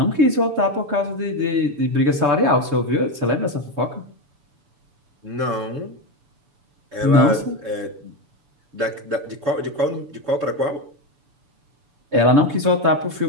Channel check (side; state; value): left; late; 6.9 ms